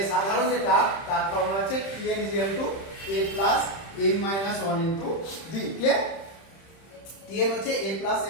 সাধারণ যেটা তার ফর্মুলা হচ্ছে tn equal to a plus n minus 1 into d। Clear? tn হচ্ছে a plus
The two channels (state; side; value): late; right; 31 ms